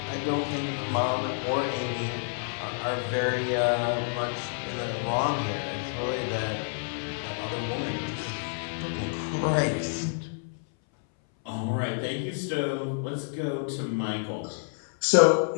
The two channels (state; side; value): silent; right; 59 dB below the other